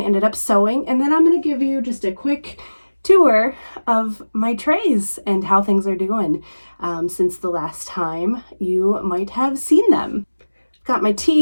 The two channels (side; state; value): both; inverted; correlation -1.00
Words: up sowing, and then I'm going to give you just a quick tour of my trays and how things are doing since the last time you might have seen them. I've got my